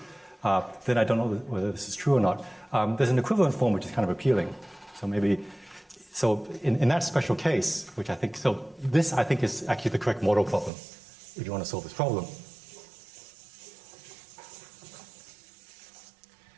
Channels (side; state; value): left; drops out; at 10.7 s